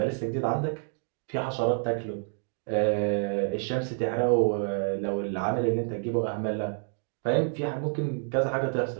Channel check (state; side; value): silent; left; 59 dB below the other